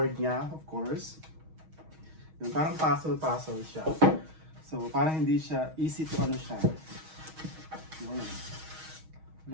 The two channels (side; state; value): left; late; 6.3 ms